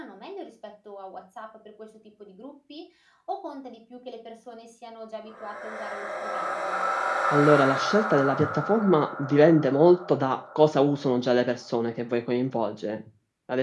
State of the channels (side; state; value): both; identical; correlation 1.00